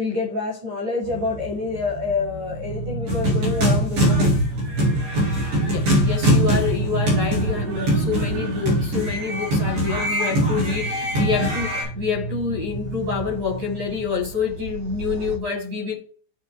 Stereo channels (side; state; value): left; late; 14 ms